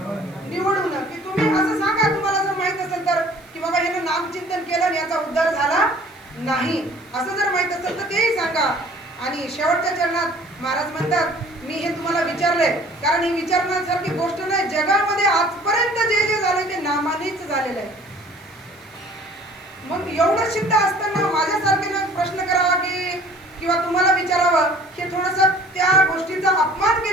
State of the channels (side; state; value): right; noise; hiss, 29 dB below the sound